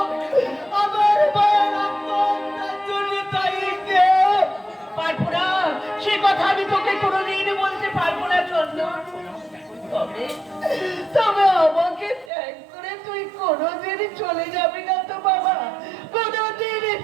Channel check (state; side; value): drops out; left; at 12.3 s